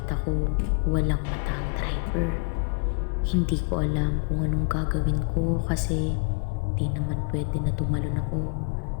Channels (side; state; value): right; quieter; 37.3 dB